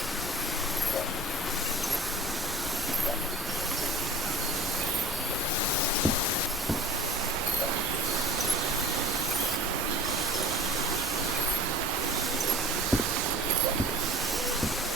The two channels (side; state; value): both; normal; correlation 0.42